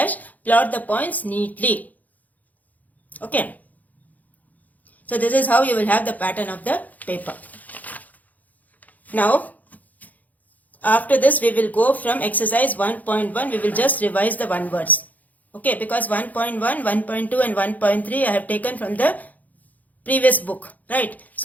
plot the points neatly. Okay. So this is how you will have the pattern of the paper. Now, after this we will go from exercise 1.1, we will just revise the one words. Okay, because 1.1, 1.2 and 1.3 I have taken from the previous book, right?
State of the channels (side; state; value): right; late; 0.079 ms